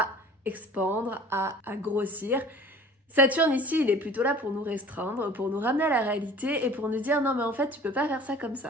expandre, à grossir. Saturne ici, il est plutôt là pour nous restreindre, pour nous ramener à la réalité et pour nous dire non mais en fait tu peux pas faire ça comme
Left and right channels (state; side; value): normal; both; correlation 0.45